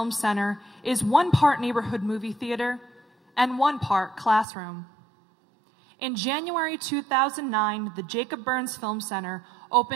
Center is one part neighborhood movie theater and one part classroom. In January 2009, the Jacob Burns Film Center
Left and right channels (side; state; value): left; drops out; at 4.5 s